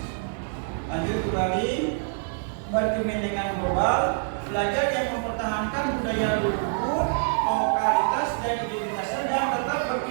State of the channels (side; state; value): left; silent; 61 dB below the other